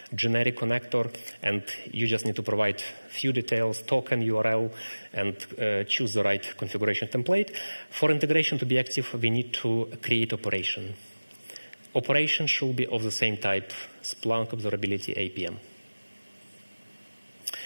generic connector, and you just need to provide few details, token, URL, and choose the right configuration template. For integration to be active, we need to create operation. Operation should be of the same type, Splunk Observability APM.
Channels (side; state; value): both; inverted; correlation -1.00